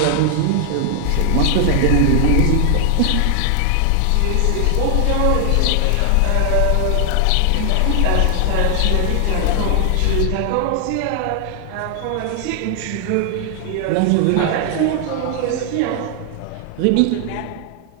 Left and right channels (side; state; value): both; different; correlation 0.00